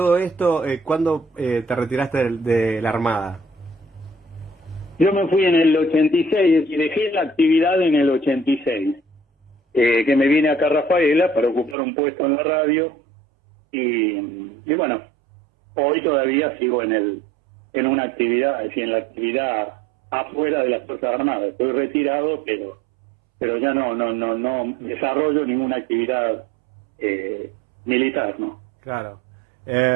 esto, ¿cuándo te retiraste de la Armada? Yo me fui en el 86 y dejé la actividad en el 86. Que me vine acá a Rafaela para ocupar un puesto en la radio y bueno, hoy todavía sigo en una actividad, es decir, en la actividad afuera de las Fuerzas Armadas. Estoy retirado, pero ya no desarrollo ninguna actividad militar, ¿no? Claro.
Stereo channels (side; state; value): left; drops out; at 11.8 s